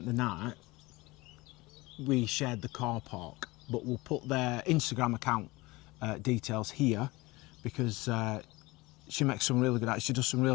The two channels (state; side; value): quieter; right; 21.9 dB